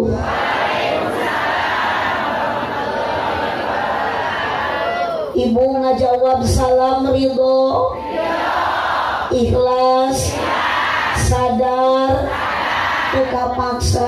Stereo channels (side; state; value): both; identical; correlation 1.00